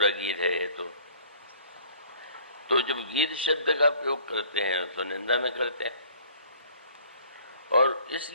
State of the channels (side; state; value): both; inverted; correlation -0.54